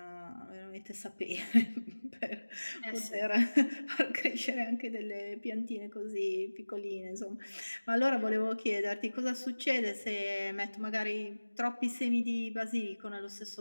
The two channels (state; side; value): inverted; both; correlation -1.00